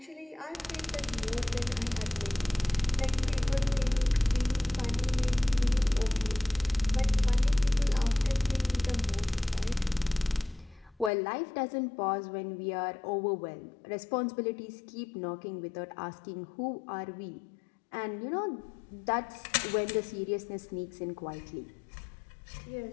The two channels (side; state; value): right; drops out; at 11.1 s